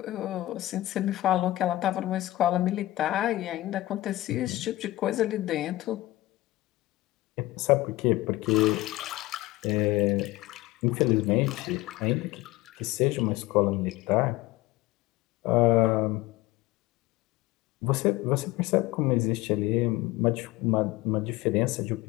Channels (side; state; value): right; quieter; 17.7 dB